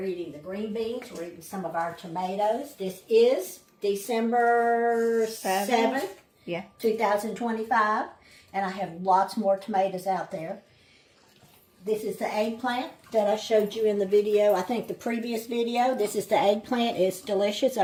eating the green beans. We're eating some of our tomatoes. This is December 7th, 2025. And I have lots more tomatoes out there. This is the eggplant that I showed you in the video. I think the previous video. This is the eggplant. It's delicious.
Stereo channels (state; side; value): identical; both; correlation 1.00